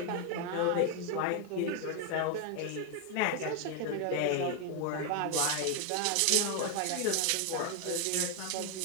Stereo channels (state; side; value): different; both; correlation 0.01